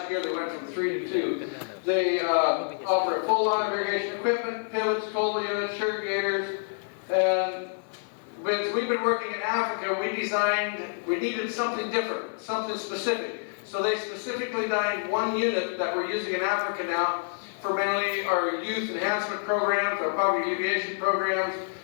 year they went from 3 to 2. They offer a full line of irrigation equipment, pivots, cold units, irrigators, and when we've been working in Africa, we needed something different, something specific. So they specifically designed one unit that we're using in Africa now for mainly our youth enhancement programs, our poverty alleviation programs,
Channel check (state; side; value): silent; right; 60 dB below the other